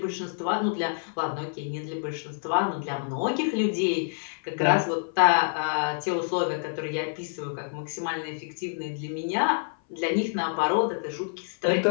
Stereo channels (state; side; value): silent; right; 58 dB below the other